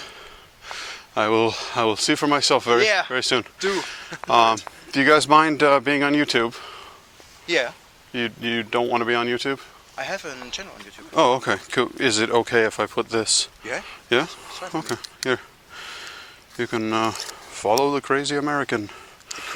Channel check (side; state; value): both; identical; correlation 1.00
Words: I will see for myself very soon. Do. Do you guys mind being on YouTube? Yeah. You don't want to be on YouTube? I have a channel on YouTube. Oh, okay. Cool. Is it okay if I put this? Yeah. Yeah? Okay. Here. You can follow the crazy American. The